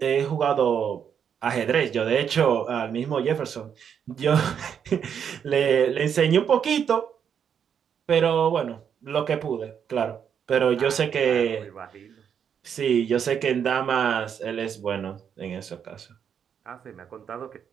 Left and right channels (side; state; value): left; quieter; 7.9 dB